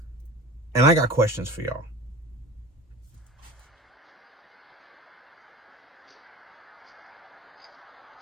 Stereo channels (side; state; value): both; normal; correlation 0.38